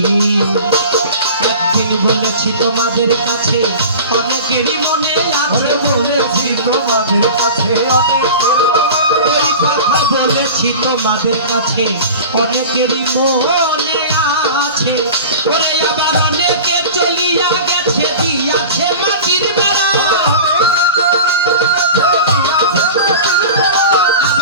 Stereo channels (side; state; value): both; inverted; correlation -0.35